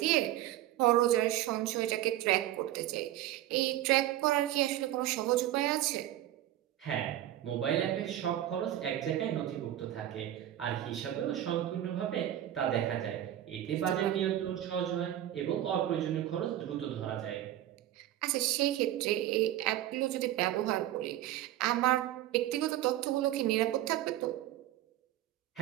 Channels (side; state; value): left; quieter; 13.1 dB